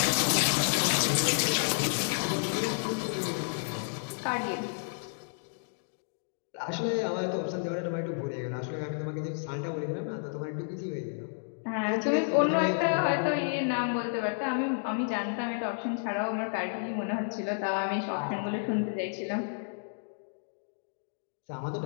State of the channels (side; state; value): right; silent; digital silence